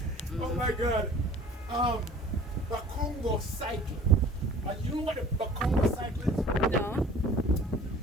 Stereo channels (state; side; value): normal; both; correlation 0.48